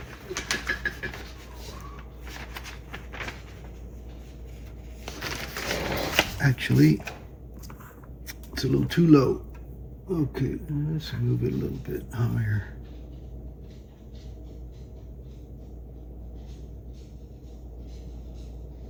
Actually, it's a little too low. Okay, let's move it a little bit higher.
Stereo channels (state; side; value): identical; both; correlation 1.00